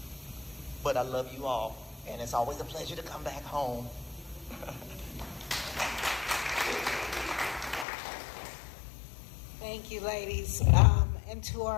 But I love you all, and it's always a pleasure to come back home. Thank you, ladies. And to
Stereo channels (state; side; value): drops out; right; at 7.9 s